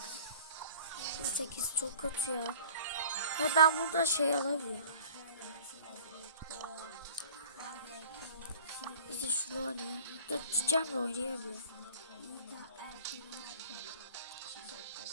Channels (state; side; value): inverted; both; correlation -0.47